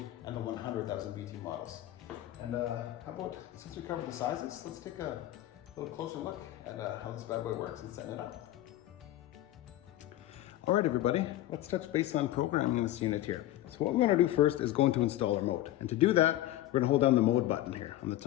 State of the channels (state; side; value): quieter; right; 14.5 dB